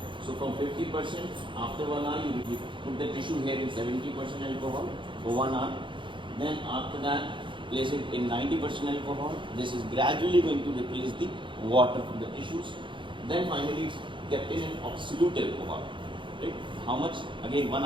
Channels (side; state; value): left; late; 0.24 ms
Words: So from 50%, after 1 hour you put the tissue here in 70% alcohol for 1 hour. Then after that, place it in 90% alcohol. This is gradually going to replace the water from the tissues. Then finally it's kept in an absolute alcohol. Right? How much? Again 1